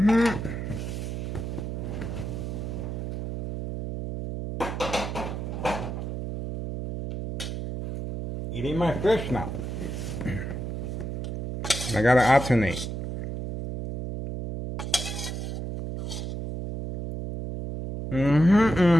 Eating my fish now. I gotta alternate.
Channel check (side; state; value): right; noise; hum, 5 dB below the sound